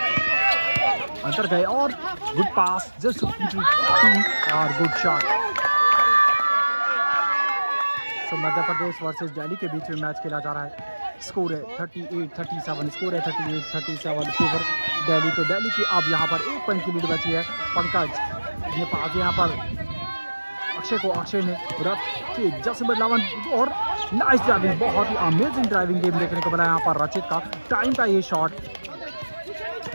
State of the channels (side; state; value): both; inverted; correlation -1.00